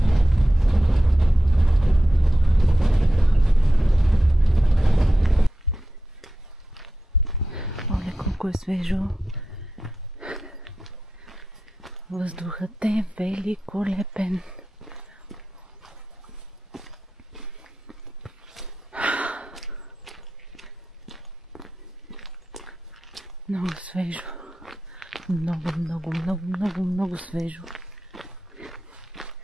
Колко е свежо. Въздухът е великолепен. Много свежо. Много свежо.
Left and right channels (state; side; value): normal; both; correlation 0.92